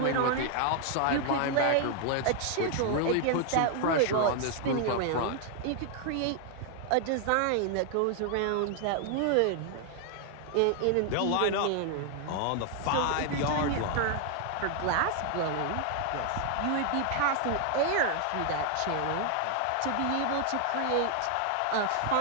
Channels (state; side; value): different; both; correlation 0.00